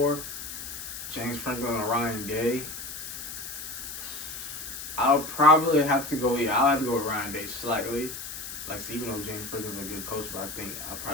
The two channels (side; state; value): left; noise; hiss, 8 dB below the sound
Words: James Franklin or Ryan Day? I'll probably have to go. Yeah, I'll have to go with Ryan Day slightly. Like, so even though James Franklin's a good coach, but I think I'll